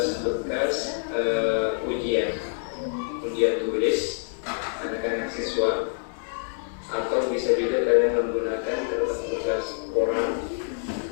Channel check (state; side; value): silent; right; digital silence